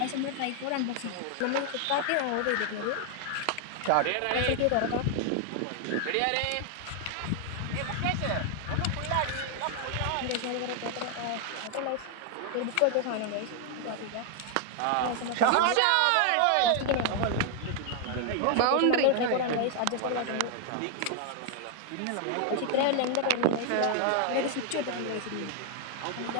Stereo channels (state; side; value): different; both; correlation 0.00